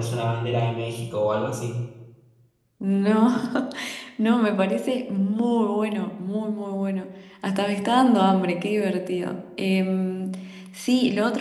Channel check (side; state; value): both; identical; correlation 1.00